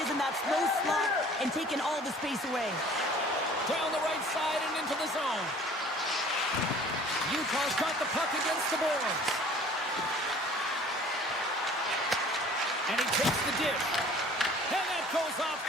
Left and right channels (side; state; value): both; normal; correlation 0.50